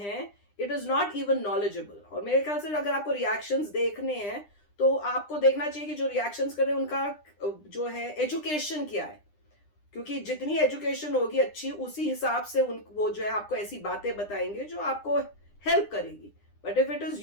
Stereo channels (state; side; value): late; right; 9.9 ms